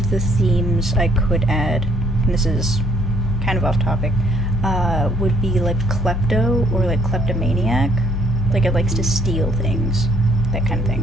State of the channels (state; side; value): normal; both; correlation 0.64